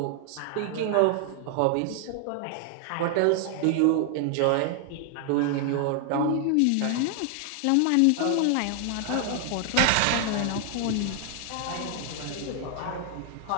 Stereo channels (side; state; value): both; different; correlation 0.00